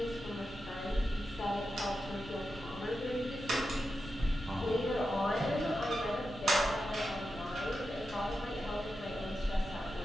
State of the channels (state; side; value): normal; both; correlation 0.89